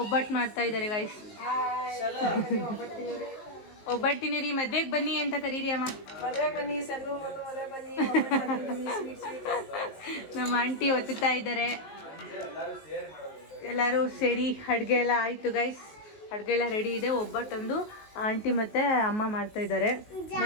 ಒಬ್ಬಟ್ಟು ಮಾಡ್ತಾ ಇದ್ದಾರೆ ಗೈಸ್. ಒಬ್ಬಟ್ಟಿನ ರೀ, ಮದ್ವೆಗೆ ಬನ್ನಿ ಅಂತ ಕರೀರಿ ಅಮ್ಮ. ನಮ್ಮ ಆಂಟಿ ಒತ್ತುತ್ತಾ ಇದ್ದಾರೆ. ಎಲ್ಲರೂ ಸೇರಿ ಅಡುಗೆ ಎಲ್ಲ ಆಯಿತು ಗೈಸ್. ಅಡುಗೆ ಎಲ್ಲ ರೆಡಿ ಇದೆ. ಒಬ್ಬಟ್ಟೊಂದು ಆಂಟಿ ಮತ್ತು ಅಮ್ಮ ಮಾಡ್ತಾ ಇದ್ದಾರೆ.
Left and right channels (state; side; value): late; right; 19 ms